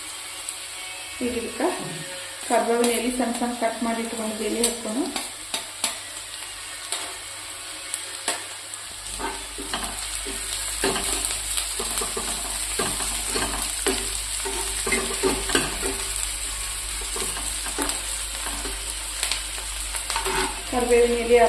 ಈಗ ಇದಕ್ಕೆ ಕರ್ಬೇವಿನ ಎಲೆ ಸಣ್ಣ ಸಣ್ಣ ಕಟ್ ಮಾಡಿ ಇಟ್ಕೊಂಡು ಎಲೆ ಹಾಕ್ಕೊಂಡು ಕರ್ಬೇವಿನ ಎಲೆ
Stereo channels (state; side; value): identical; both; correlation 1.00